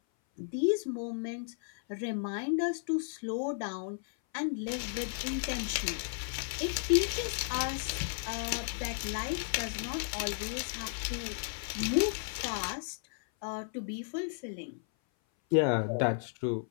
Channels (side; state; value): right; silent; 55 dB below the other